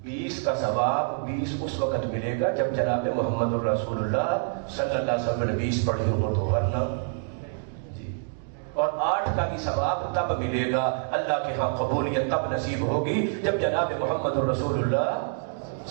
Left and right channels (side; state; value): left; silent; digital silence